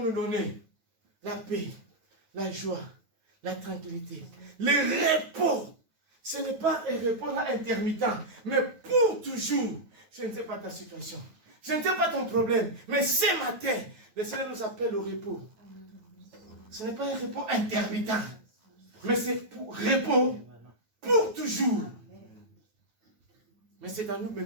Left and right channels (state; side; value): late; left; 9.2 ms